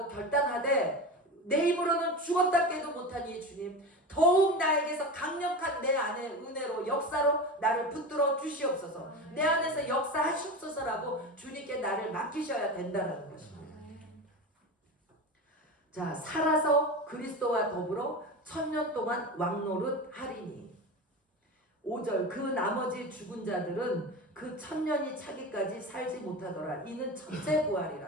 결단하되, 내 입으로는 죽었다 깨도 못하니 주님 더욱 나에게서 강력한 내 안의 은혜로 역사로 나를 붙들어 주시옵소서. 내 안에서 역사하시옵소서라고 주님께 나를 맡기셔야 된다는 것입니다. 자, 살아서 그리스도와 더불어 1000년 동안 왕노릇 하리니. 5절 그 나머지 죽은 자들은 그 1000년이 차기까지 살지 못하더라. 이는 첫째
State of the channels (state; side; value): normal; both; correlation 0.26